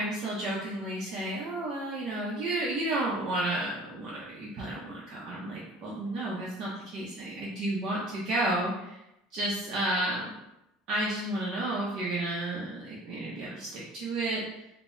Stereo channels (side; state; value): both; normal; correlation 0.48